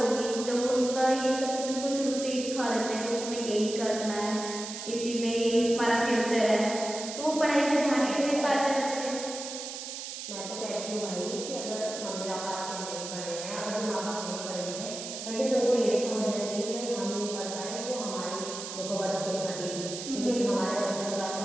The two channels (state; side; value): noise; right; hiss, 8 dB below the sound